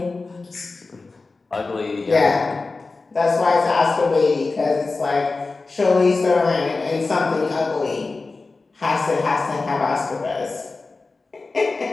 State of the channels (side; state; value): right; quieter; 3.7 dB